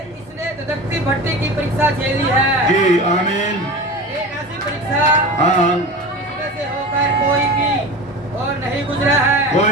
इसने धधकती भट्टी की परीक्षा झेली है। जी, आमीन, एक ऐसी परीक्षा हाँ, जिसमें से होकर कोई भी और नहीं गुजरा है।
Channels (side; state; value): both; normal; correlation 0.31